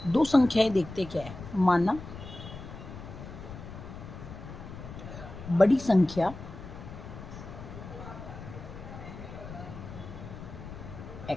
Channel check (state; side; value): noise; left; rumble, 12 dB below the sound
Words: दो संख्याएं देखते क्या है। माना बड़ी संख्या